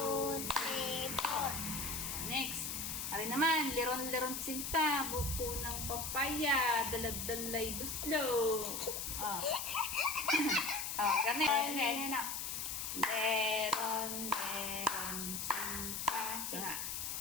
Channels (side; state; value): left; noise; hiss, 3 dB below the sound